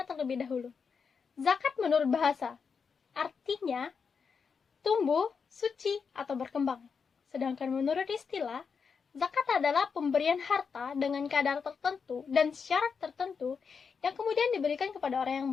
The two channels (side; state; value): right; quieter; 5.8 dB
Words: terlebih dahulu. Zakat menurut bahasa, artinya tumbuh, suci, atau berkembang. Sedangkan menurut istilah, zakat adalah pemberian harta dengan kadar tertentu dan syarat tertentu yang kemudian diberikan kepada orang